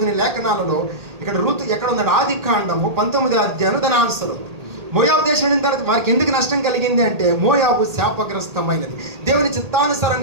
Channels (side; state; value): left; late; 1.8 ms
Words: లేఖనాలలో ఇక్కడ రూతు ఎక్కడ ఉందంటే ఆది కాండము 19వ అధ్యాయం దాని ఆన్సర్. మోయాబు దేశం వెళ్ళిన తర్వాత వారికి ఎందుకు నష్టం కలిగింది అంటే మోయాబు శాపగ్రస్తమైనది. దేవుని